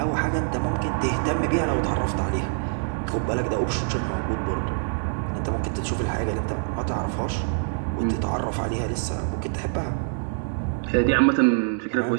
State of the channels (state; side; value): silent; left; 62 dB below the other